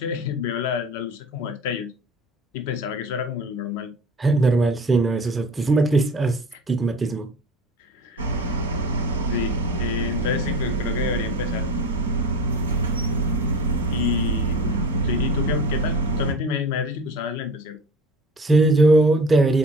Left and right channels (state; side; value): normal; both; correlation 0.36